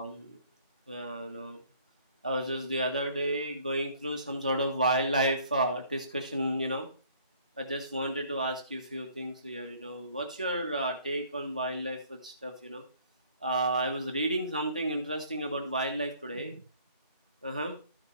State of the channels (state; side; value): inverted; both; correlation -0.58